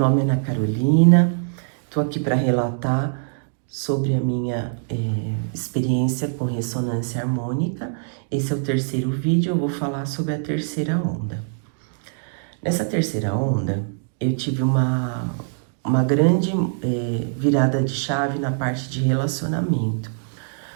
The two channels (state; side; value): silent; left; digital silence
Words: é Ana Carolina, estou aqui para relatar sobre a minha experiência com ressonância harmônica. Esse é o terceiro vídeo, eu vou falar sobre a terceira onda. Nessa terceira onda, eu tive uma grande virada de chave na parte de relacionamento.